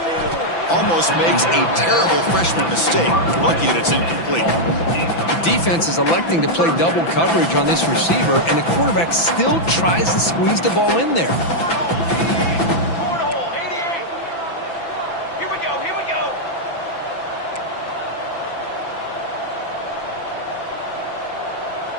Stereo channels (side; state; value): right; late; 6.0 ms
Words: Almost makes a terrible freshman mistake. Lucky that it's incomplete. The defense is electing to play double coverage on this receiver, and the quarterback still tries to squeeze the ball in there.